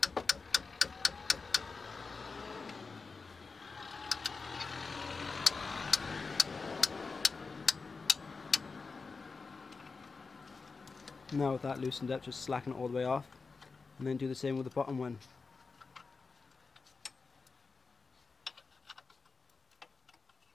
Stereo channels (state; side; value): quieter; right; 4.4 dB